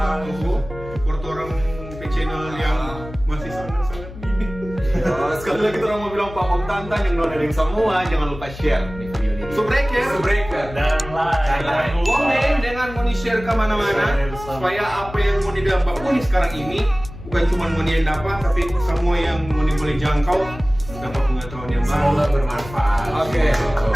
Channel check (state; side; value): noise; left; hum, 14 dB below the sound